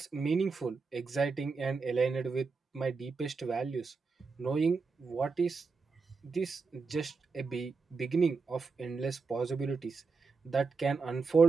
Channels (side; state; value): left; quieter; 4.7 dB